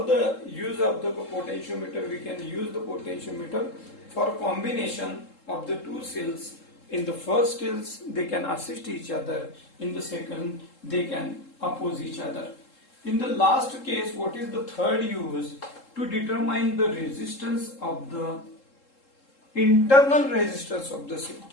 the use of the potentiometer? We can use the potentiometer for combination of the two cells. In the first case, they can assist each other. In the second, they can oppose each other. In the last case, what is the third use? To determine the resistance of the internal resistance of the cell.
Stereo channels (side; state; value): right; late; 3.7 ms